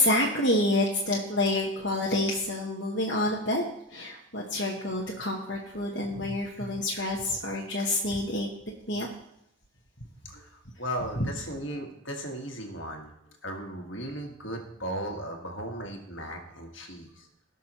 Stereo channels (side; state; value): both; normal; correlation 0.19